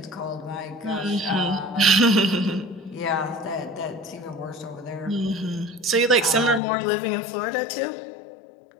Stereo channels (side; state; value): right; drops out; at 6.6 s